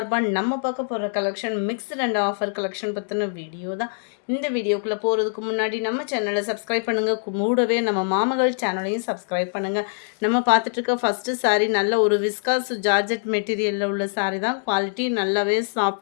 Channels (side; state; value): right; silent; 63 dB below the other